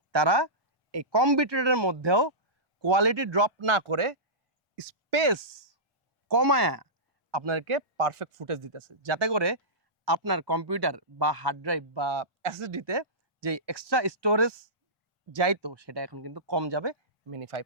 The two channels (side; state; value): both; normal; correlation -0.18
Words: তারা এই কম বিটরেটের মধ্যেও কোয়ালিটি ড্রপ না করে স্পেস কমায়া আপনাকে পারফেক্ট ফুটেজ দিতেছে, যাতে করে আপনার কম্পিউটার বা হার্ড ড্রাইভ বা এসএসডিতে যে এক্সট্রা স্টোরেজ যাইতো সেটা এখন কিন্তু কম যাবে মিনি